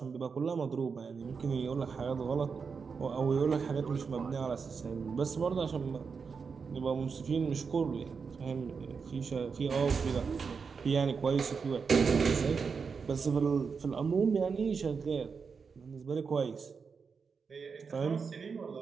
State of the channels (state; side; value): quieter; left; 5.5 dB